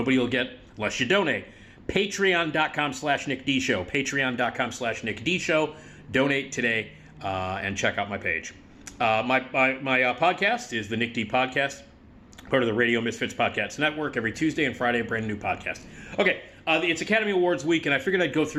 will get unless you donate. Patreon.com/NickDShow. Patreon.com/NickDShow. Donate today and check out my page. My podcast is the Nick D Podcast, part of the Radio Misfits Podcast Network. Every Tuesday and Friday, a brand new podcast. Okay, it's Academy Awards week, and I figured I'd go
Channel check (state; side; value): identical; both; correlation 1.00